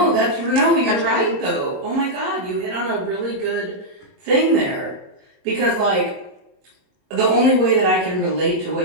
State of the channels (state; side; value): late; left; 21 ms